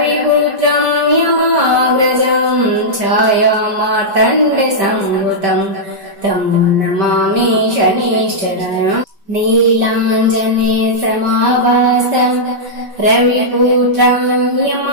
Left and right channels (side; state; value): left; late; 5.1 ms